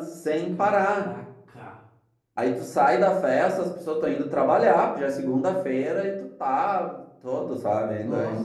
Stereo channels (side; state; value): both; identical; correlation 1.00